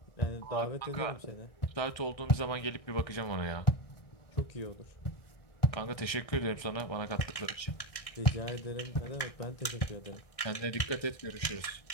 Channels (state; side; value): late; right; 1.6 ms